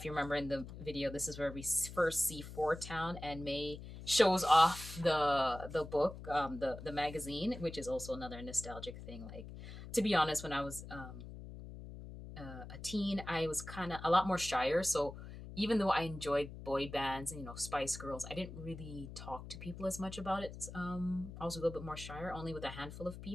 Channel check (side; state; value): left; noise; hum, 12 dB below the sound